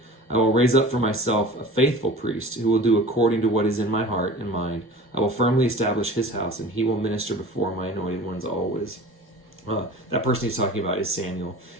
I will raise up for myself a faithful priest who will do according to what is in my heart and mind. I will firmly establish his house, and he will minister before my anointed ones always." That person he's talking about is Samuel,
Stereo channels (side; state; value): both; normal; correlation 0.40